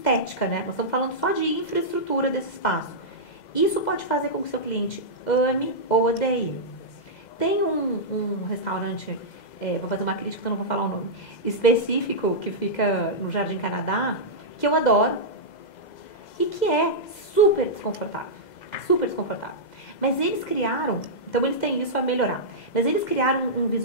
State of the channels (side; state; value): right; late; 2.0 ms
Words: né? Nós estamos falando só de infraestrutura desse espaço. Isso pode fazer com que o seu cliente ame ou odeie. Tem um restaurante, vou fazer uma crítica, então não vou falar o nome, específico, que fica no Jardim Canadá, que eu adoro e que é super desconfortável. Super desconfortável. Mas eles criaram, então eles têm isso a melhorar, mas eles criaram um